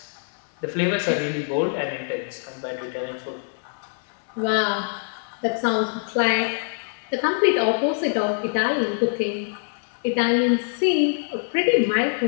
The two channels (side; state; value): right; silent; digital silence